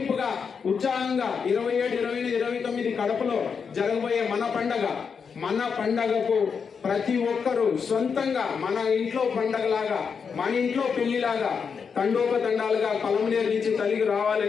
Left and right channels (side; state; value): right; quieter; 6.1 dB